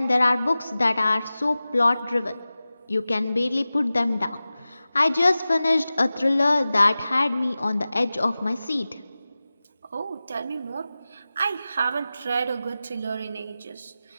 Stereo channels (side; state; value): both; inverted; correlation -0.96